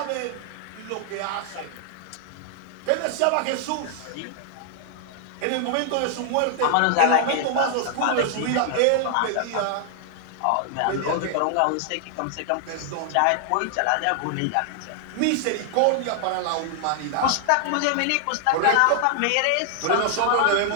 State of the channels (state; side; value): different; both; correlation 0.00